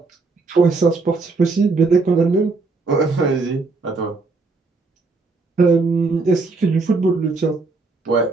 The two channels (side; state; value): left; quieter; 3.9 dB